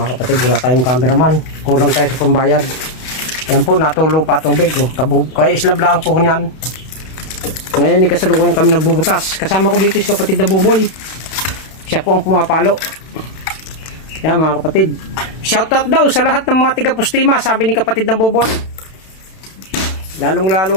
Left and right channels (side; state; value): right; late; 32 ms